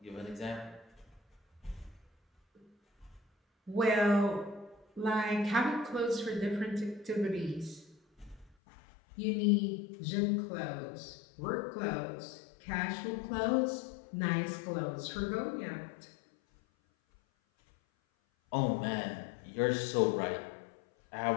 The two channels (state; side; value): drops out; right; at 8.6 s